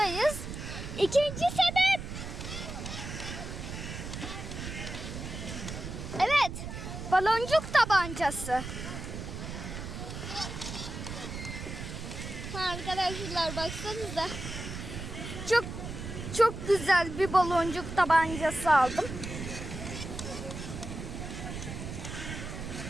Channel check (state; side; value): noise; right; rumble, 7 dB below the sound